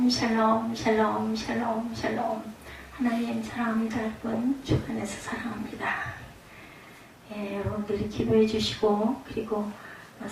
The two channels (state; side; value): identical; both; correlation 1.00